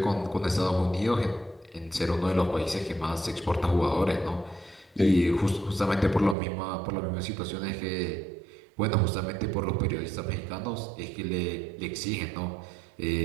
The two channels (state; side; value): drops out; left; at 6.4 s